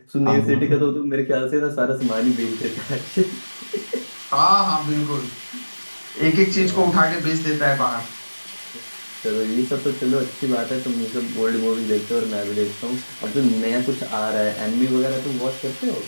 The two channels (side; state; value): both; inverted; correlation -1.00